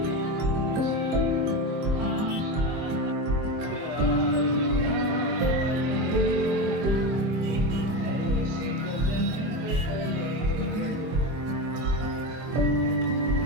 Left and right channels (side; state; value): left; late; 24 ms